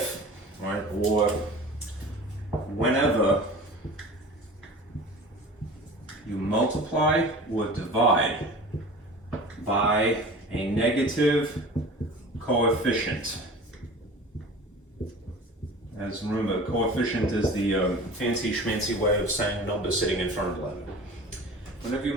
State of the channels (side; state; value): both; normal; correlation 0.39